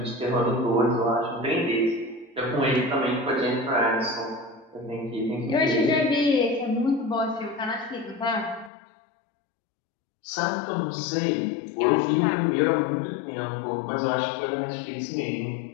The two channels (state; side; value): drops out; right; at 8.7 s